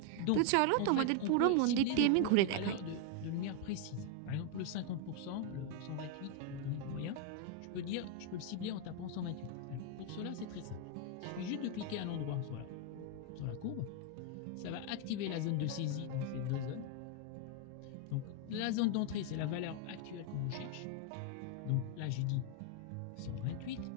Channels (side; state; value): both; different; correlation 0.00